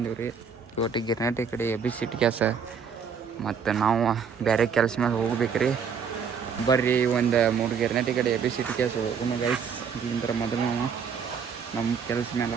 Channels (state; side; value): quieter; left; 6.5 dB